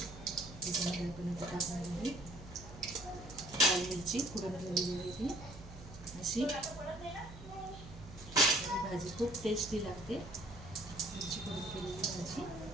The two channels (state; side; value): noise; right; hum, 15 dB below the sound